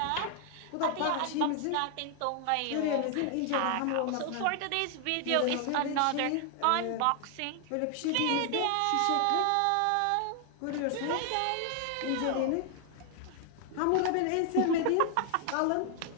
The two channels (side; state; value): both; different; correlation 0.00